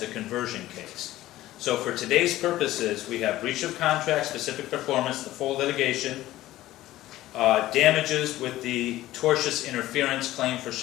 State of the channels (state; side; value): quieter; right; 15.5 dB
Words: conversion case. So for today's purposes, we have breach of contract, specific performance, the full litigation, damages with the tortious interference claim for